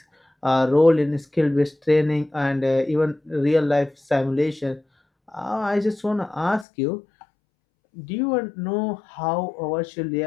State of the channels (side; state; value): right; drops out; at 6.7 s